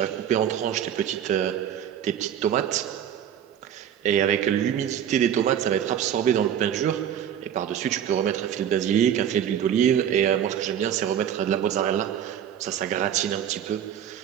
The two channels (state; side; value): quieter; left; 9.7 dB